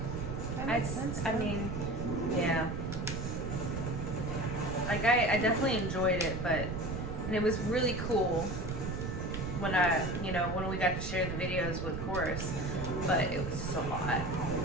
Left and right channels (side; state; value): right; noise; rumble, 4 dB below the sound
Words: That makes sense. I mean, yeah. Like, I definitely enjoyed it, and it was really cool when when we got to share the videos with chorus, but it was just a lot.